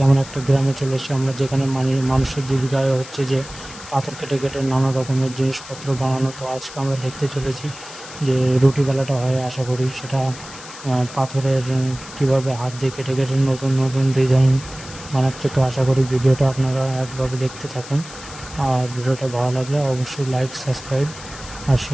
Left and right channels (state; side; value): noise; left; hiss, 15 dB below the sound